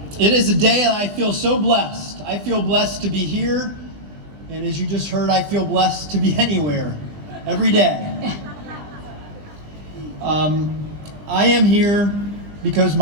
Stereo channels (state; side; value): late; left; 20 ms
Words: day that I feel so blessed. I feel blessed to be here, and as you just heard, I feel blessed to be anywhere, every day. I am here because